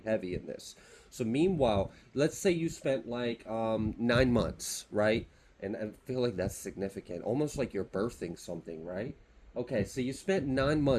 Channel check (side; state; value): both; identical; correlation 1.00